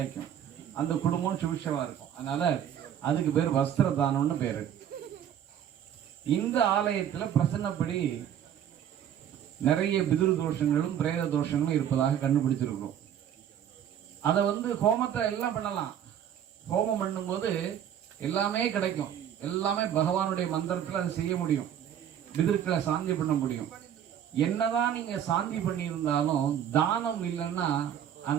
அந்த குடும்பம் சுபிஷமா இருக்கும். அதனால அதுக்கு பேர் வஸ்திர தானம்னு பேரு. இந்த ஆலயத்துல பிரசன்னப்படி நிறைய பிதுர் தோஷங்களும் பிரேத தோஷங்களும் இருப்பதாக கண்டுபிடிச்சிருக்கிறோம். அதை ஹோமத்தை எல்லாம் பண்ணலாம். ஹோமம் பண்ணும்போது எல்லாமே கிடைக்கும். எல்லாமே பகவானுடைய மந்திரத்துல அதை செய்ய முடியும். பிதுர்களை சாந்தி பண்ண முடியும். என்னதான் நீங்க சாந்தி பண்ணியிருந்தாலும் தானம் இல்லைன்னா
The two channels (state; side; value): quieter; left; 9.7 dB